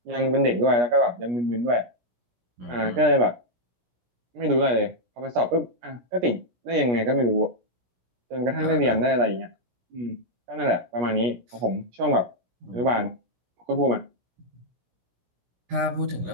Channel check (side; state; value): left; late; 17 ms